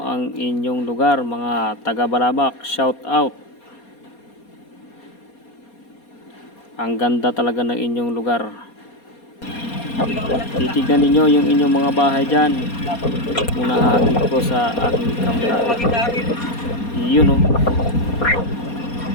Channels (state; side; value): late; right; 4.2 ms